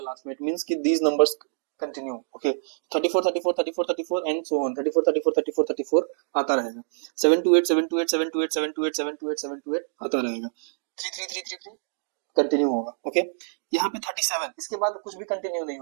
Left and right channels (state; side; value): silent; left; digital silence